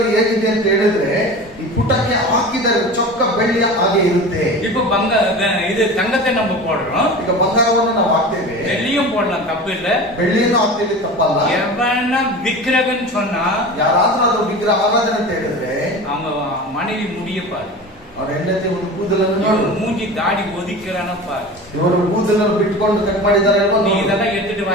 ಹೇಗಿದೆ ಅಂತ ಹೇಳಿದ್ರೆ ಈ ಪುಟಕ್ಕೆ ಹಾಕಿದ ಚೊಕ್ಕ ಬೆಳ್ಳಿಯ ಹಾಗೆ ಇರುತ್ತೆ. இப்போ இது தங்கத்தை நம்ம போடுறோம், ಈಗ ಬಂಗಾರವನ್ನು ನಾವು ಹಾಕ್ತೇವೆ, வெள்ளியும் போடலாம், தப்பு இல்ல. ಬೆಳ್ಳಿಯನ್ನು ಹಾಕ್ತೇವೆ, ತಪ್ಪಲ್ಲ. எவனா விக்கிரகன் சொன்னா ಯಾರಾದ್ರೂ ಅದು ವಿಗ್ರಹ ಆರಾಧನೆ ಅಂತ ಹೇಳಿದ್ರೆ அவங்க மனைவி முடிய பாரு, ಅವ್ರ ಹೆಂಡತಿ ಒಂದು ಕೂದಲನ್ನು ನೋಡು, மூஞ்சி தாடி ஒதிக்கிறான பாரு, ಇವರು ಕೂದಲನ್ನು ಬಿಟ್ಕೊಂಡು ಕಟ್ ಮಾಡಿದ್ದಾರೆ ಅಲ್ವಾ? நீ இதெல்லாம் எடுத்துட்டு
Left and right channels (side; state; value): both; normal; correlation 0.33